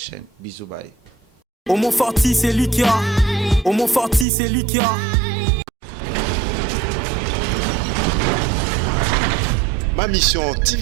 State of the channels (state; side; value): drops out; left; at 4.2 s